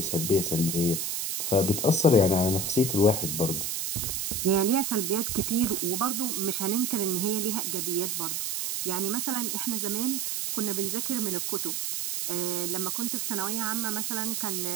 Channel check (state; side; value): noise; right; hiss, 1 dB below the sound